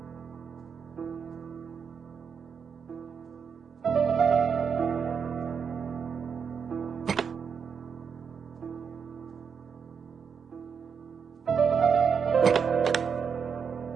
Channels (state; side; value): quieter; left; 6.5 dB